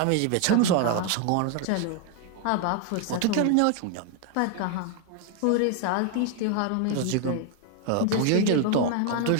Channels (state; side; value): different; both; correlation 0.00